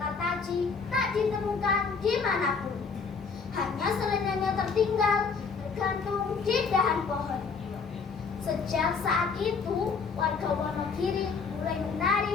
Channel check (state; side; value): quieter; right; 5.2 dB